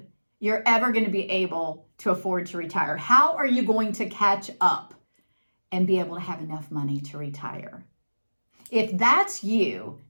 you're ever going to be able to afford to retire. How are you going to catch up and be able to have enough money to retire? If that's you,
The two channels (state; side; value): inverted; both; correlation -1.00